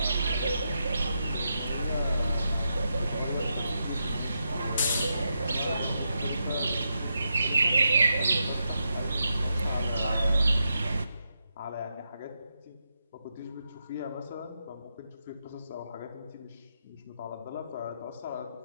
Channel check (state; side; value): inverted; both; correlation -0.84